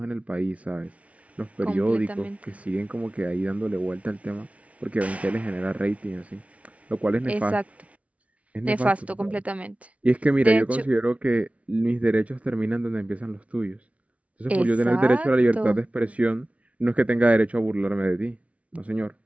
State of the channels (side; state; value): left; late; 0.065 ms